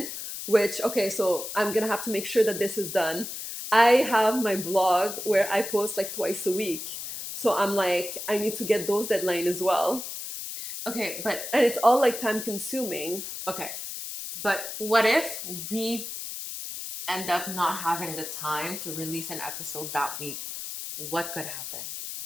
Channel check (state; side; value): noise; left; hiss, 7 dB below the sound